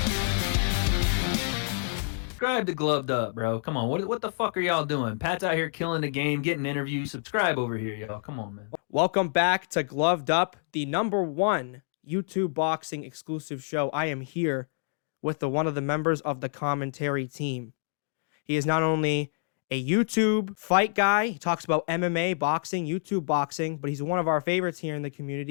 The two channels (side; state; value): right; silent; digital silence